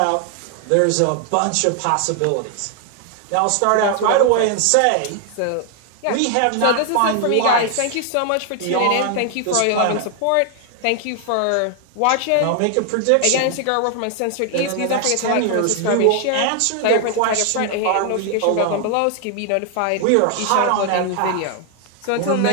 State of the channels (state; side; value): different; both; correlation 0.00